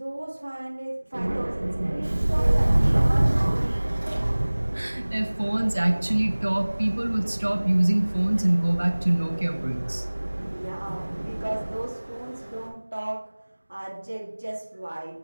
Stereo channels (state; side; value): inverted; both; correlation -1.00